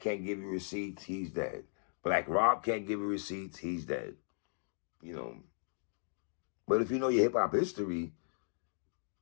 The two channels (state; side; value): silent; right; digital silence